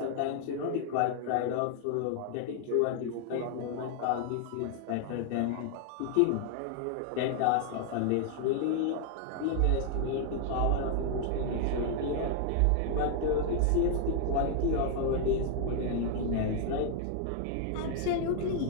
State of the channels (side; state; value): both; different; correlation 0.00